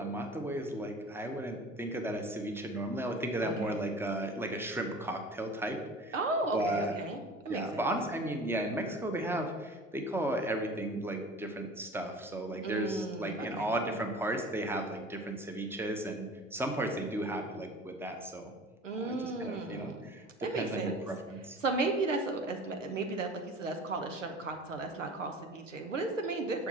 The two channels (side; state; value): both; normal; correlation 0.41